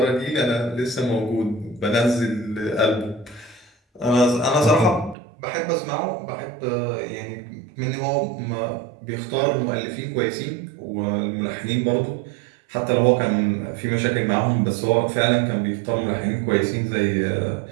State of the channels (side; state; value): left; drops out; at 5.2 s